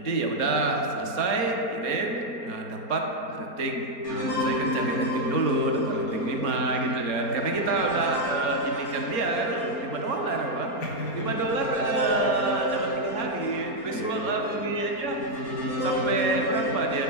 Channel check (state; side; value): late; right; 4.3 ms